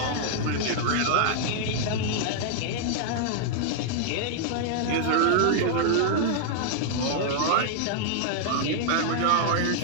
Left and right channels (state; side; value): different; both; correlation -0.01